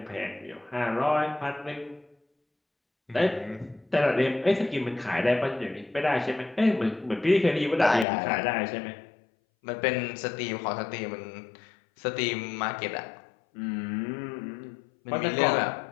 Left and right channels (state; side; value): drops out; right; at 8.1 s